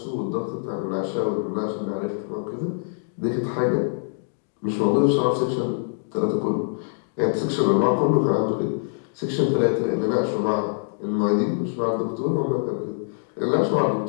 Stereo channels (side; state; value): right; silent; digital silence